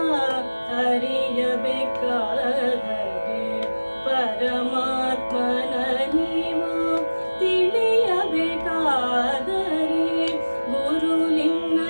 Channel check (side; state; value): both; inverted; correlation -1.00